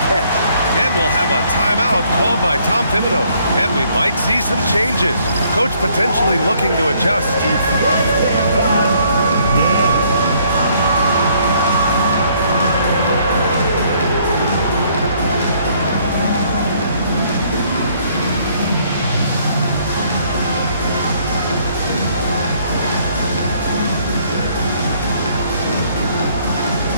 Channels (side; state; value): both; inverted; correlation -0.65